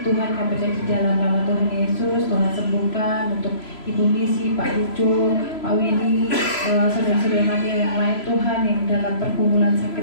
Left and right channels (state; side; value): late; right; 3.0 ms